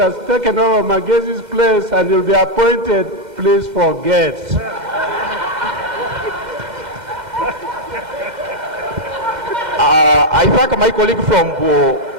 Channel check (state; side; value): late; left; 2.1 ms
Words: taken over Magezi's place and he'll be appointed, please forget. I thank my colleague from